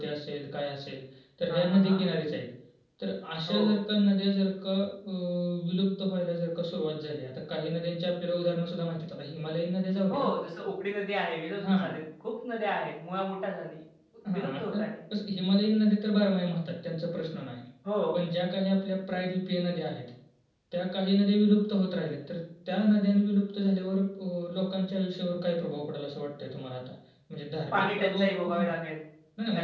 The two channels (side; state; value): both; identical; correlation 1.00